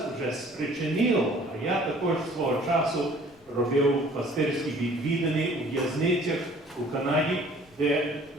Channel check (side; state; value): left; noise; rumble, 29 dB below the sound